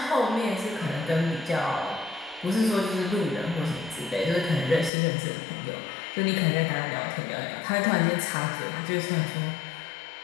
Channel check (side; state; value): right; drops out; at 4.9 s